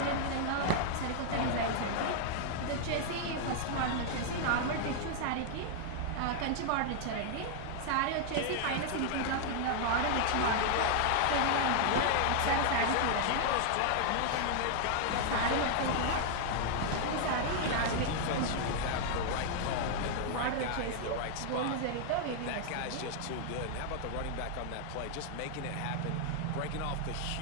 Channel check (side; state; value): both; different; correlation 0.00